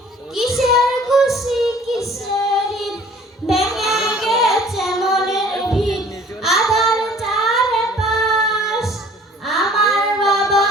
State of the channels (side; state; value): both; normal; correlation 0.52